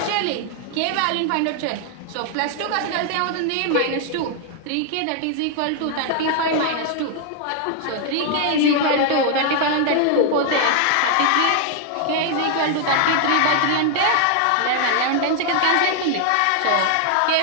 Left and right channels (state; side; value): different; both; correlation 0.00